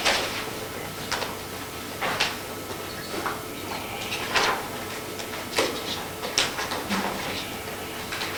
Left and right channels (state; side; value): identical; both; correlation 1.00